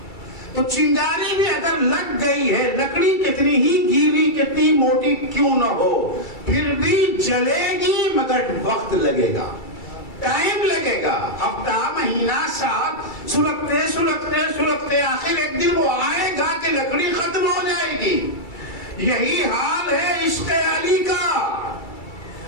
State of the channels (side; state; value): right; late; 2.3 ms